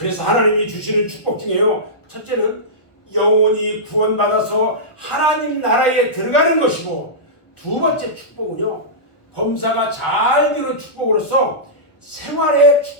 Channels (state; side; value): late; right; 1.1 ms